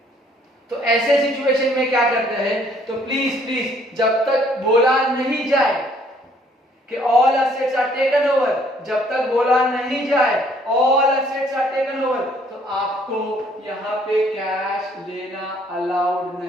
तो ऐसे सिचुएशन में क्या करते हैं, तो प्लीज जब तक बोला नहीं जाए कि all assets are taken over, जब तक बोला नहीं जाए all assets are taken over, तो आपको यहाँ पे कैश लेना अलाउड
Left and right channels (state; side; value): normal; both; correlation 0.62